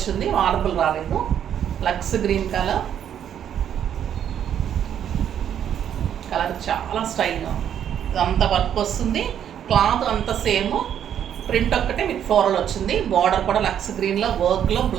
మార్బుల్ రాలేదు. లక్స్ గ్రీన్ కలర్, కలర్ చాలా స్టైల్గా ఉంది. ఇదంతా వర్క్ వస్తుంది, క్లాత్ అంతా సేమ్, ప్రింట్ ఒక్కటే మీకు ఫ్లోరల్ వచ్చింది. బార్డర్ కూడా లక్స్ గ్రీన్లో వర్క్లో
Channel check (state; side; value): quieter; left; 9.5 dB